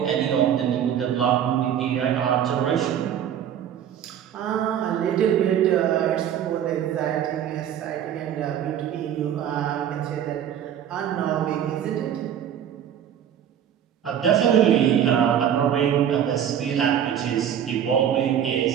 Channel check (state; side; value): quieter; left; 9.6 dB